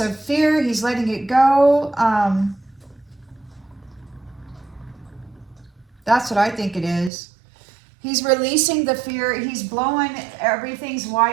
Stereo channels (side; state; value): left; drops out; at 7.1 s